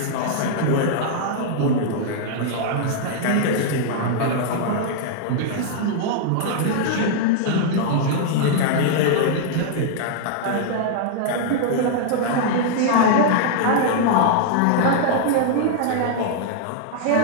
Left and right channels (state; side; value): different; both; correlation -0.01